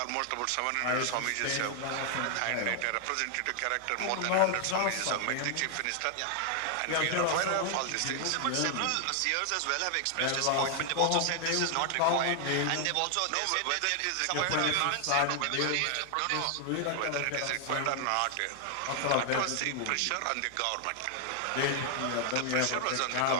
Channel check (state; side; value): different; both; correlation 0.00